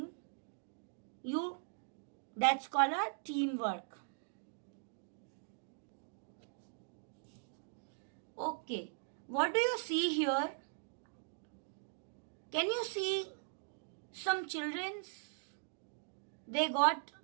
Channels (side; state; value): left; silent; digital silence